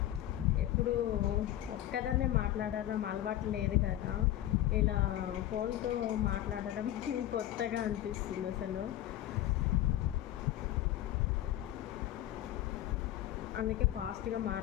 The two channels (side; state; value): right; quieter; 13.3 dB